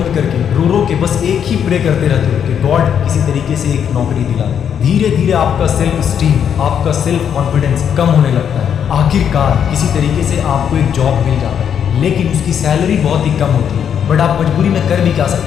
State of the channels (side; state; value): right; quieter; 8.3 dB